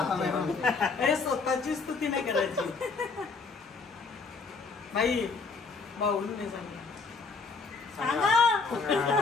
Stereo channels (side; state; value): right; quieter; 4.5 dB